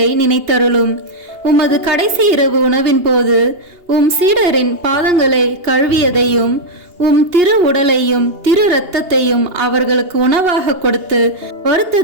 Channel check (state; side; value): late; left; 2.8 ms